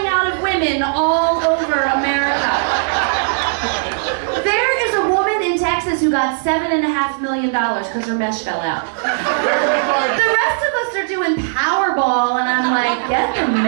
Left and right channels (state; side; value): silent; left; 64 dB below the other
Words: out of women all over America. There is a woman in Texas who got $7.5 million because her mesh fell out. The rest of us are doing Powerball, and I'm like, get the